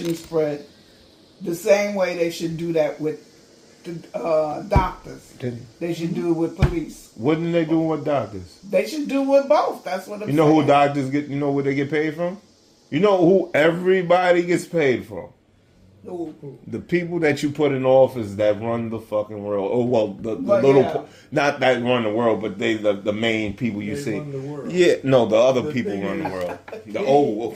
spread. The same way they should do that with the doctors. They should do it with police. What are they doing with doctors? They should do with both. That's what I'm You know saying. who doctors get? You know where they get paid from? You know who everybody gets paid from? Who? The people that you put in office that run the fucking world. Oh well, the Well, little, yeah. not that run the world, but they the main people you They see. run the world. Yeah, no, the other The people thing run the is- world. The old.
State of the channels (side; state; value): both; identical; correlation 1.00